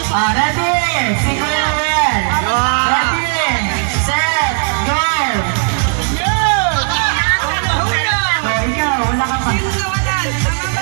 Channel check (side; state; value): left; silent; digital silence